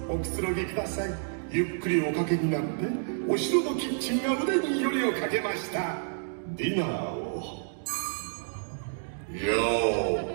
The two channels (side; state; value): left; silent; digital silence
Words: おくつろぎください。ゆっくりおかけになって、お城のキッチンが腕によりをかけました。ディナーをよ